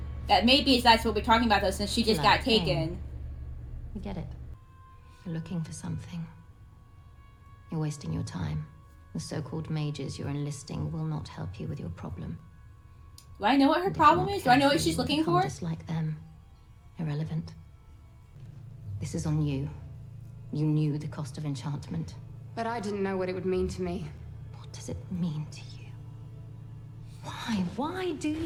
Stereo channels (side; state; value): both; identical; correlation 1.00